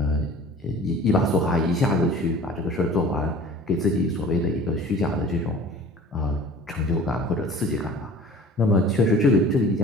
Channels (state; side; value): normal; both; correlation 0.44